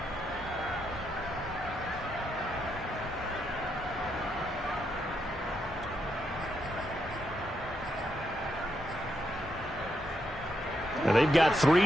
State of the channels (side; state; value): both; normal; correlation 0.80